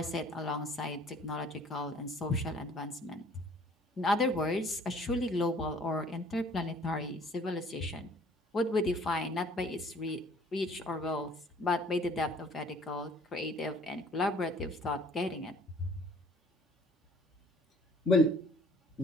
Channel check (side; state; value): both; normal; correlation 0.54